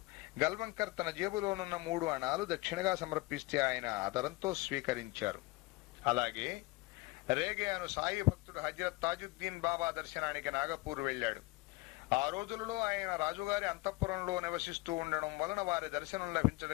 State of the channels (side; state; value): right; quieter; 22.6 dB